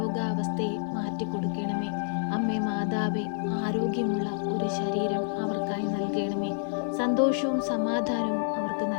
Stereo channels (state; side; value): silent; right; digital silence